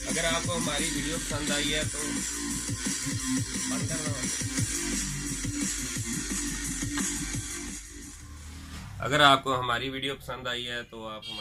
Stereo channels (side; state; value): both; identical; correlation 1.00